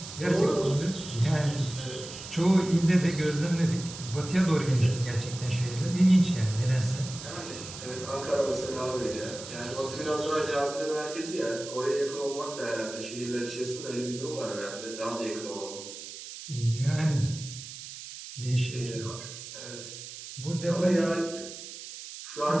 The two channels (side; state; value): right; noise; hiss, 12 dB below the sound